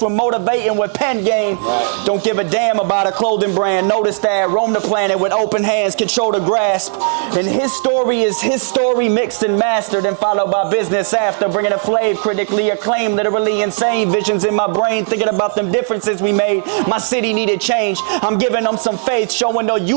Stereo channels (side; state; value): left; silent; digital silence